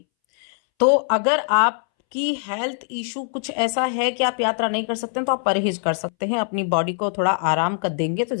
तो अगर आपकी हेल्थ इशू कुछ ऐसा है कि आप यात्रा नहीं कर सकते हैं तो आप परहेज कर सकते हैं, अपनी बॉडी को थोड़ा आराम कर देंगे तो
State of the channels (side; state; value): right; silent; 63 dB below the other